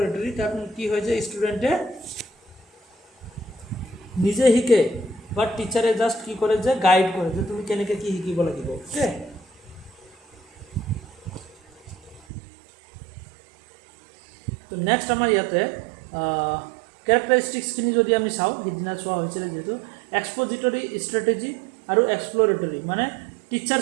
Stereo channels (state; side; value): drops out; left; at 12.2 s